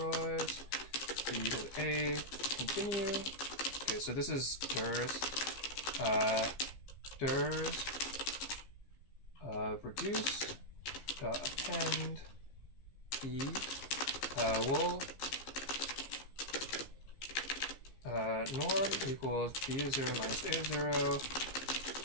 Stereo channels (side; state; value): right; late; 15 ms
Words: B to A, continue. Okay, so this is dirs. Dirs of reduce append E will norm equals B of 0 minus A of 0.